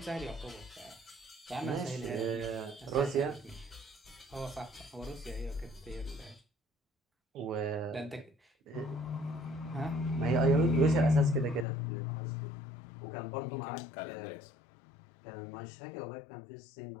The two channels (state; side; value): drops out; right; at 11.7 s